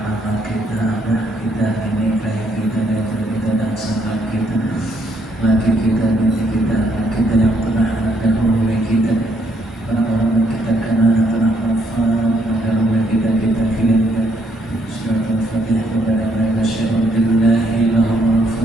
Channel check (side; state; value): both; normal; correlation 0.71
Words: mama kita, abah kita, nenek kayak kita dan sahabat kita, laki kita, nenek kita, anak kita yang pernah dahulu kita, orang-orang yang kita kenal yang pernah wafat, dahulu kita kirimkan surat Al-Fatihah kepada mereka. Syahadu billahi lahumul